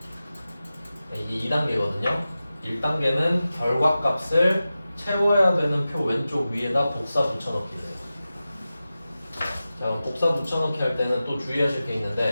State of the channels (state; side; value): inverted; both; correlation -0.94